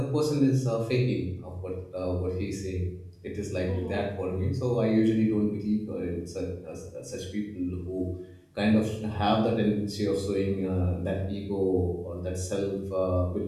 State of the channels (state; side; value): identical; both; correlation 1.00